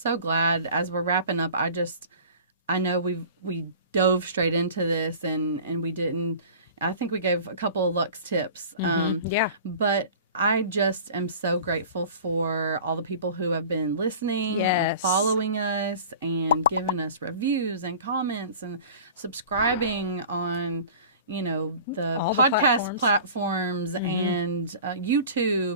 so glad as we're wrapping up. I know we dove straight into this and we didn't. I think we gave a couple of Lux tips. But I just am so grateful for all the people who have been listening and following us and giving us reviews and comments and subscribing on, the all podcast the platforms and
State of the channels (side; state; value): both; inverted; correlation -0.41